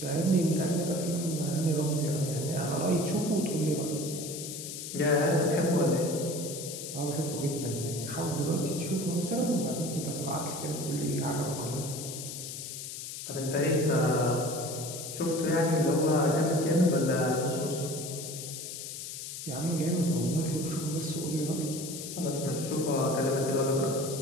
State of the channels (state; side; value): noise; left; hiss, 8 dB below the sound